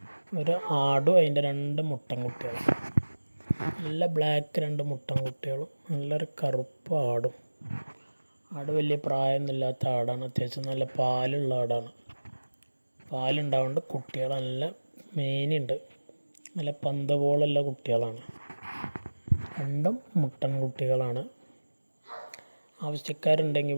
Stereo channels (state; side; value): inverted; both; correlation -1.00